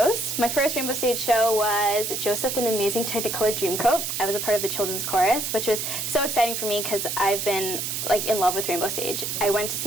My first Rainbow Stage show was Joseph and the Amazing Technicolor Dreamcoat. I was a part of the children's chorus, which was so exciting for me because I've been like in love with Rainbow Stage. I went to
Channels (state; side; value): noise; right; hiss, 3 dB below the sound